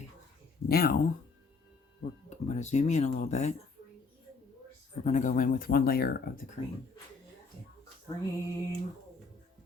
now I'm going to zoom in a little bit. We're going to go in with 1 layer of the cream. The cream.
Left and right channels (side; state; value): right; quieter; 4.3 dB